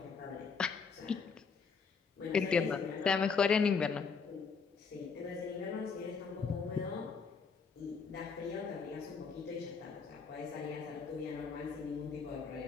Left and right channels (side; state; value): right; quieter; 5.4 dB